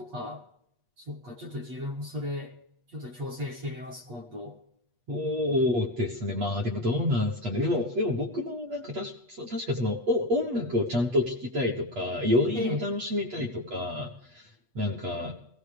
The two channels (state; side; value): late; left; 8.3 ms